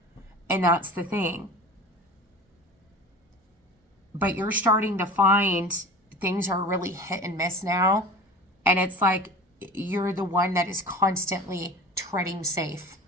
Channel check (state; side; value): normal; both; correlation 0.35